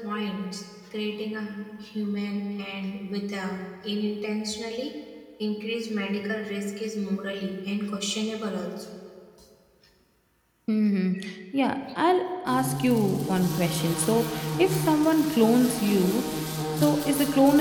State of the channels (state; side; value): identical; both; correlation 1.00